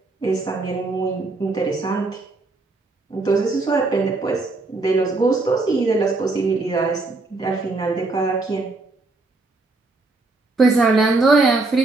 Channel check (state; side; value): quieter; left; 3.4 dB